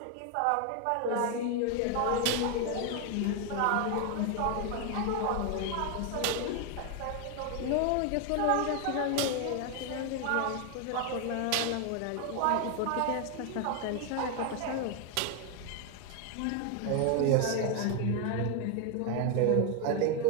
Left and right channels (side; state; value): both; different; correlation 0.01